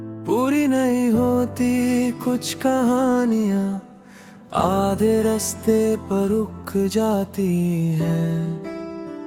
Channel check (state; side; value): identical; both; correlation 1.00